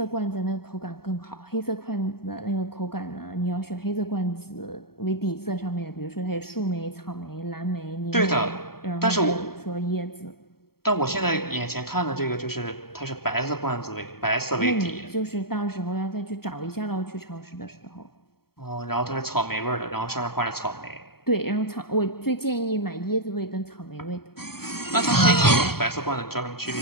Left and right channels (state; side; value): late; right; 0.95 ms